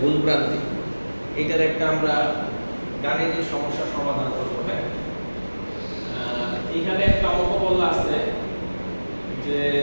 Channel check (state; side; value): inverted; both; correlation -1.00